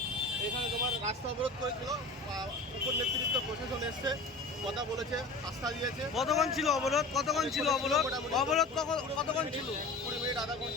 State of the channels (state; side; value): quieter; right; 3.1 dB